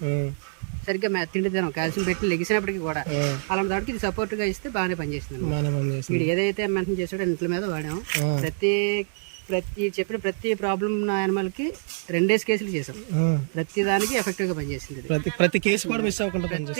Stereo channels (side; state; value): left; silent; 61 dB below the other